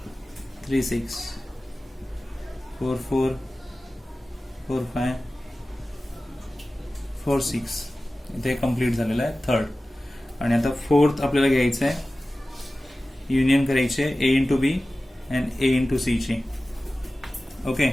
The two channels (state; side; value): normal; both; correlation 0.96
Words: 3 6 4 4 4 5 4 6. इथे कम्प्लीट झालेलं आहे थर्ड. आणि आता फोर्थ आपल्याला घ्यायचं आहे. युनियन करायचे A into B and A into C ची. ओके,